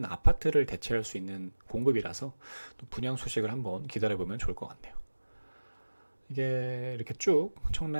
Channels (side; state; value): both; inverted; correlation -1.00